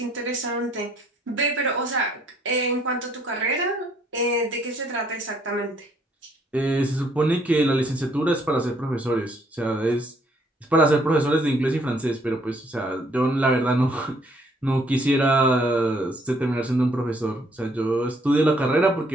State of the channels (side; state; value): both; normal; correlation 0.65